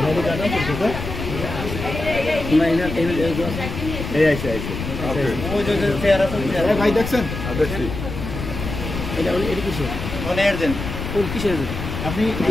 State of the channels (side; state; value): left; noise; rumble, 6 dB below the sound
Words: ভাই দেখছেন আপনি